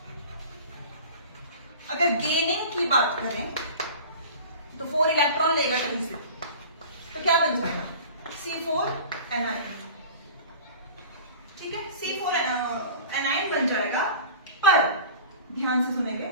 अगर गेनिंग की बात करें तो 4 इलेक्ट्रॉन लेगा कहीं से, तो क्या बन जाएगा? C4 A9. ठीक है, C4 एनाइन बन जाएगा। पर ध्यान से सुनेंगे,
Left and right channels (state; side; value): inverted; both; correlation -0.39